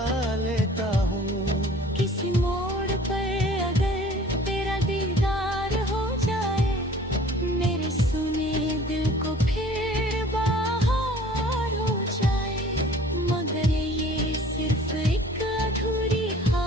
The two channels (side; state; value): both; normal; correlation 0.49